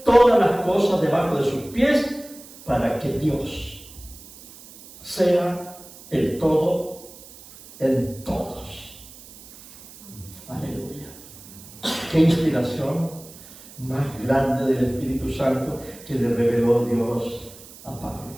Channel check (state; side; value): noise; right; hiss, 19 dB below the sound